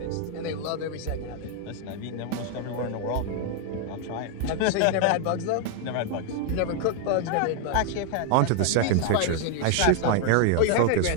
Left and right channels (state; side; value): different; both; correlation 0.00